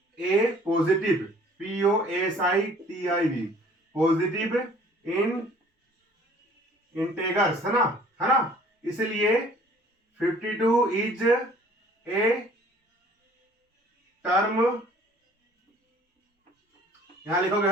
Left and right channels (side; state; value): both; normal; correlation 0.53